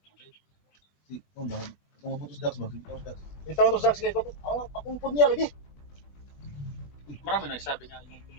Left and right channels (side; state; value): right; late; 21 ms